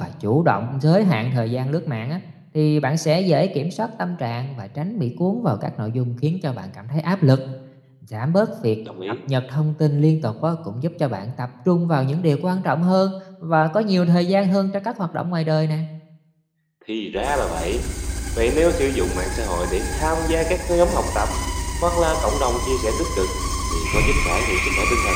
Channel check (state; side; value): identical; both; correlation 1.00